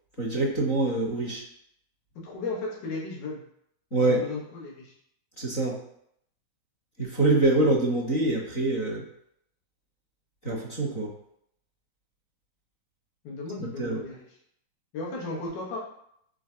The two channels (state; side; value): late; right; 3.9 ms